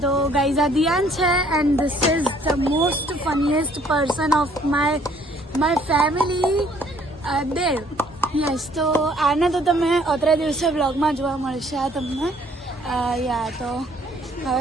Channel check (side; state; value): both; normal; correlation 0.61